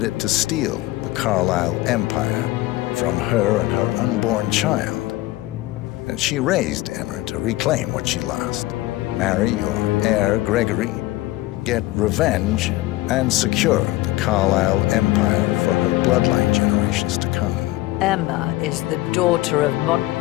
it to steal the Carlyle empire from her and her unborn child. And she raised Emma to reclaim what she lost, marry your heir, Gregory, get revenge, and secure the Carlyle empire for her bloodline generations to come. Emma is the daughter of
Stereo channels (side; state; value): right; quieter; 17.9 dB